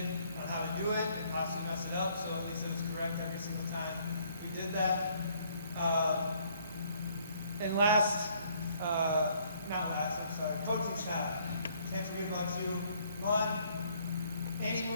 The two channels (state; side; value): inverted; both; correlation -0.64